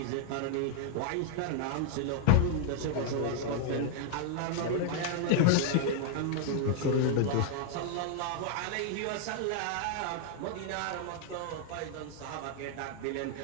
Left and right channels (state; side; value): different; both; correlation 0.00